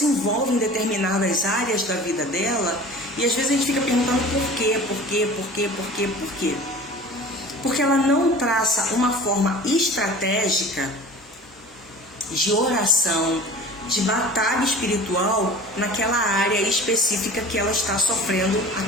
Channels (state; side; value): normal; both; correlation 0.40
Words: em determinadas áreas da vida dela e às vezes a gente fica perguntando por quê? Porque ela não traça uma forma estratégica de oração, de batalha espiritual naquela área específica que ela está sofrendo,